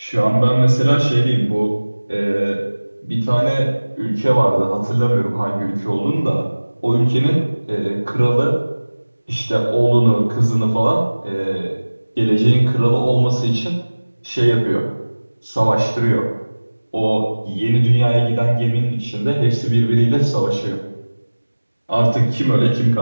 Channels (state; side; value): inverted; both; correlation -1.00